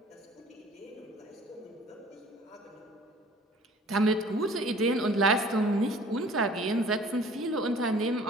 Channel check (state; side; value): normal; both; correlation 0.50